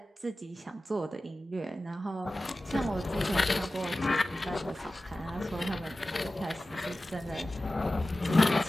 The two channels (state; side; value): normal; both; correlation 0.95